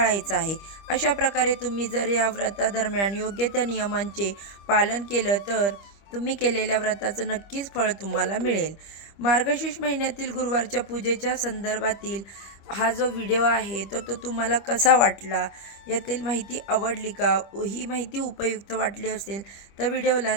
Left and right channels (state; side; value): late; right; 25 ms